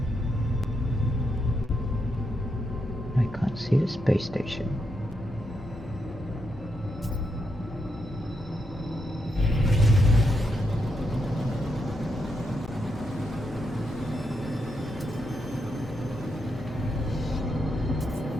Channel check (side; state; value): both; normal; correlation 0.82